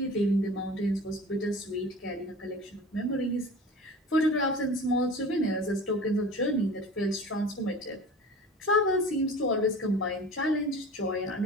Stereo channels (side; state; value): both; normal; correlation 0.38